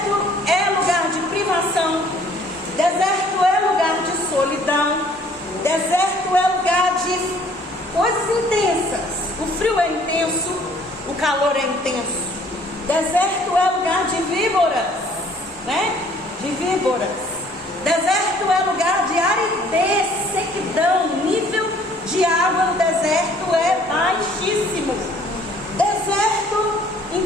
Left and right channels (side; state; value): both; normal; correlation 0.57